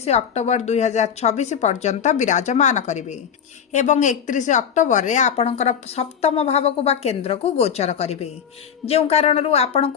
अक्टोबर 2026 पर्यंत विराजमान करिवे एवं 31 अक्टोबर रे आपणकर सप्तम भाव को बा केंद्र को गोचर करिवे, जेउ कारणरू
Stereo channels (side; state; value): right; quieter; 7.9 dB